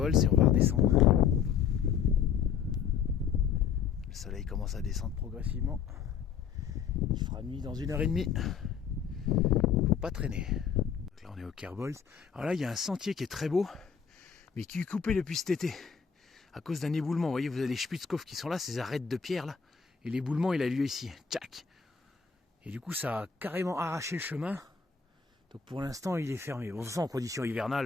et on va redescendre. Le soleil commence à descendre progressivement. Il fera nuit dans 1h30. Faut pas traîner. Donc là on est au Kerbolz. Alors là il y a un sentier qui est très beau, mais qui est coupé depuis cet été. À cause d'un éboulement. Vous voyez, vous avez les Spitzkopf qui sont là, ces arêtes de pierre là. Et l'éboulement il a lieu ici. Tchac. Et du coup ça a carrément arraché le chemin. Donc pour l'instant il est fermé. Bon, de toute façon en conditions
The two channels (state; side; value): quieter; right; 7.0 dB